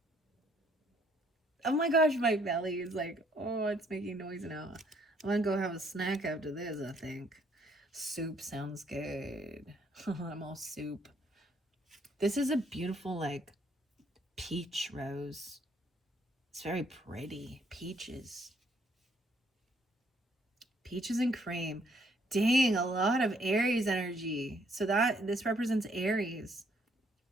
Oh my gosh, my belly is like, oh, it's making noise now. I'm going to go have a snack after this, I think. Soup sounds good. I'm all soup. This is a beautiful, like, peach rose. It's very pretty. Peaches. Peaches and cream. Dang, a lot of Aries energy. So this represents Aries.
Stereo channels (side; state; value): both; normal; correlation 0.67